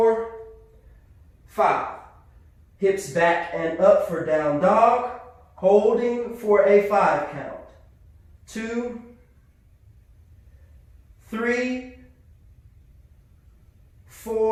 5. Hips back and up for down dog. Holding for a 5 count. 2, 3,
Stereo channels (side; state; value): both; identical; correlation 1.00